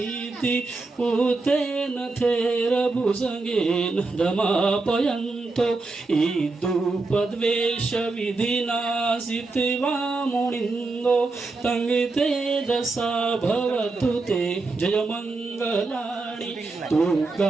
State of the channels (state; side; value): quieter; left; 3.6 dB